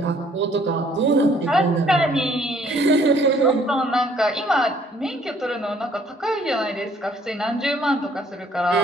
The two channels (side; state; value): both; normal; correlation 0.61